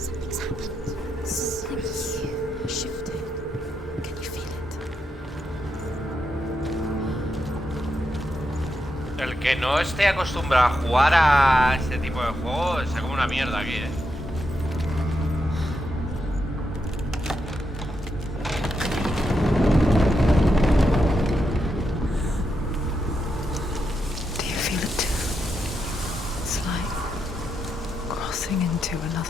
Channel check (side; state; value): both; normal; correlation 0.84